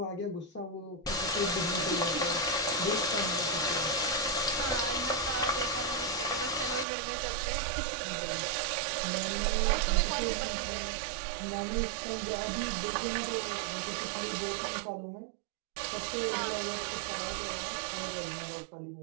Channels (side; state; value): left; drops out; at 6.9 s